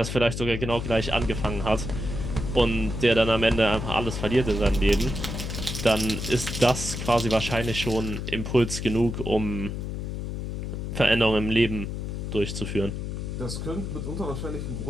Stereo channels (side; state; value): left; noise; hum, 5 dB below the sound